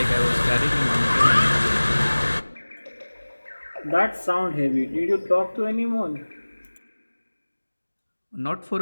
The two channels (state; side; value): inverted; both; correlation -1.00